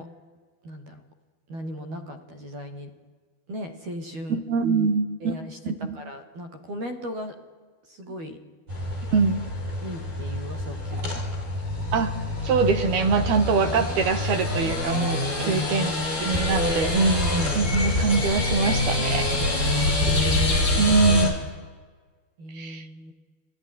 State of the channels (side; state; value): left; late; 12 ms